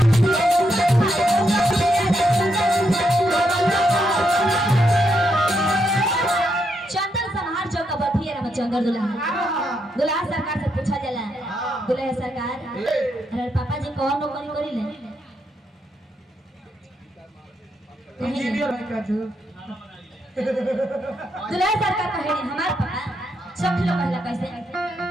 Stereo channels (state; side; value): normal; both; correlation 0.79